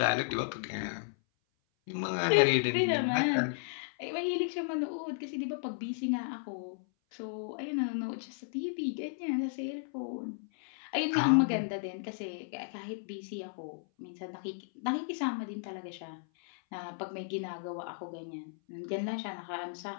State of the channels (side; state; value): right; silent; 55 dB below the other